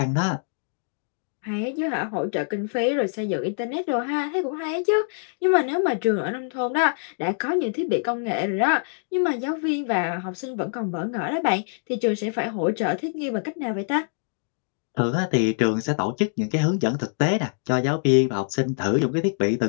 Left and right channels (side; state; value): right; silent; digital silence